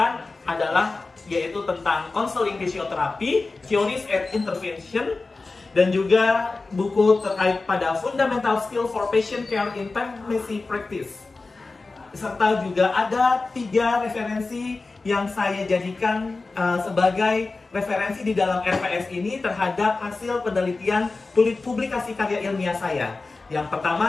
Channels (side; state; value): right; quieter; 3.7 dB